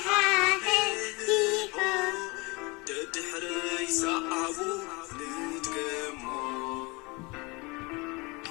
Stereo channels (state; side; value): quieter; right; 26.6 dB